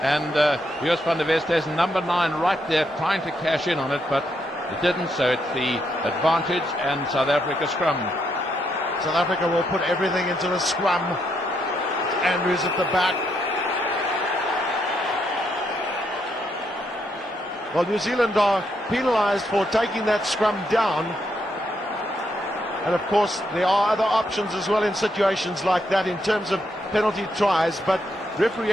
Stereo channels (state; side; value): normal; both; correlation 0.78